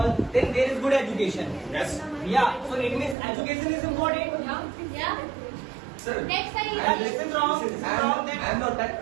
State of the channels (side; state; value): left; drops out; at 3.2 s